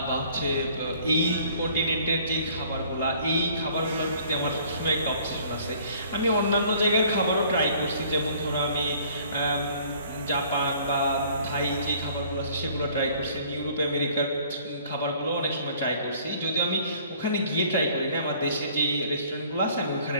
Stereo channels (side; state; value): both; inverted; correlation -0.56